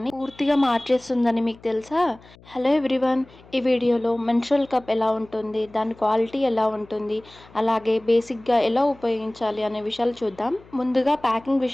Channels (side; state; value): left; noise; hum, 25 dB below the sound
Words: పూర్తిగా మార్చేస్తుందని మీకు తెలుసా? Hello everyone! ఈ వీడియోలో మెన్స్ట్రువల్ కప్ ఎలా ఉంటుంది? దాని క్వాలిటీ ఎలా ఉంటుంది? అలాగే బేసిక్‌గా ఎలా ఉపయోగించాలి అనే విషయాలు చూద్దాం. ముందుగా ప్యాకింగ్